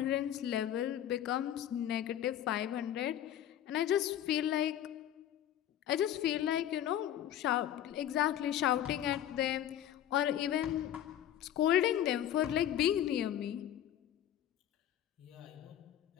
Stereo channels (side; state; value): right; quieter; 11.1 dB